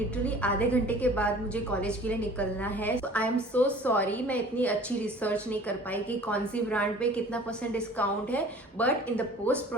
आधे घंटे के बाद मुझे कॉलेज के लिए निकलना है। So I am so sorry, मैं इतनी अच्छी रिसर्च नहीं कर पाई कि कौन सी ब्रांड पे कितना % डिस्काउंट है, but in the post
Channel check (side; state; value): both; normal; correlation 0.47